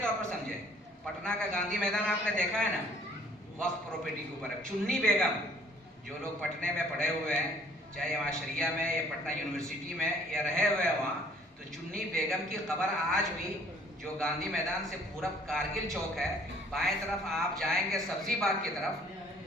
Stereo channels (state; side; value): normal; both; correlation 0.58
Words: طور پر سمجھیں، پٹنہ کا گاندھی میدان آپ نے دیکھا ہے نا، وقف پراپرٹی کے اوپر. چنی بیگم، جو لوگ پٹنہ میں پڑھے ہوئے ہیں، چاہے وہاں شریعہ میں یا پٹنہ یونیورسٹی میں یا رہے ہوئے ہیں وہاں، تو چنی بیگم کی قبر آج بھی جو گاندھی میدان سے پورب کارگل چوک ہے، بائیں طرف آپ جائیں گے سبزی باغ کی طرف،